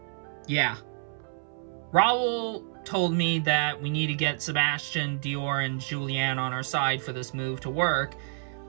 Yeah. Raul told me that we need to get Sebastian, Dior, and Julianne on our side for this move to work,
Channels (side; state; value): left; silent; 59 dB below the other